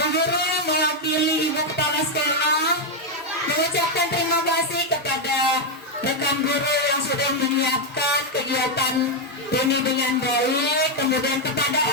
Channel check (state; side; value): normal; both; correlation 0.02